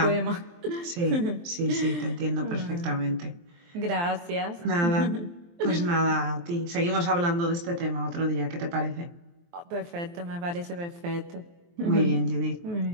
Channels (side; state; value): left; late; 23 ms